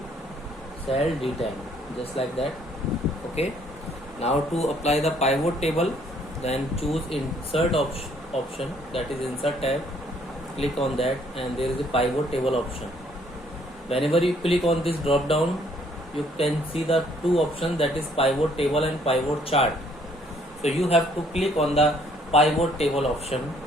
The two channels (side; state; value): both; normal; correlation 0.64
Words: cell D10, just like that. Okay, now to apply the pivot table, then choose insert option, that is insert tab. Click on that and there is a pivot table option. Whenever you click on this drop down, you can see the two options, that is pivot table and pivot chart. So you have to click on the pivot table option.